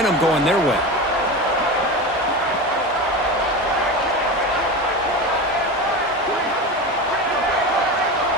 going their way.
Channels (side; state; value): both; normal; correlation 0.25